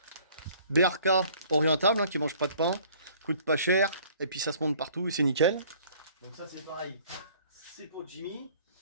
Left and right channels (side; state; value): both; inverted; correlation -0.55